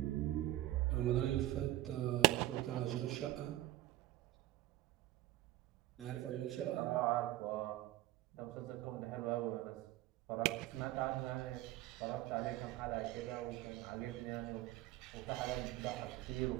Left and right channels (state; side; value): quieter; left; 16.0 dB